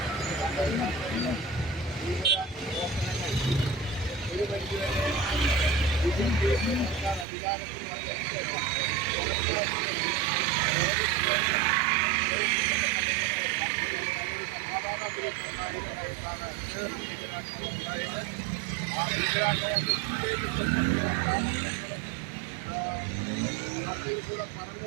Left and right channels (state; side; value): drops out; left; at 7.2 s